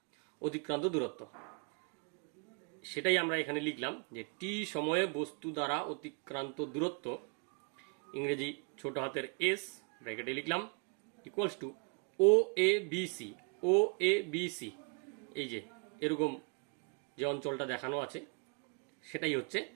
অতিক্রান্ত দূরত্ব। সেটাই আমরা এখানে লিখলাম যে টি সময়ে বস্তু দ্বারা অতিক্রান্ত দূরত্ব, ইংরেজি ছোট হাতের এস ব্র্যাকেটে লিখলাম, equals to O A B C. O A B C, এই যে এরকম যে অঞ্চলটা দেখানো আছে সেটাই হচ্ছে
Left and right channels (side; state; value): left; quieter; 37.5 dB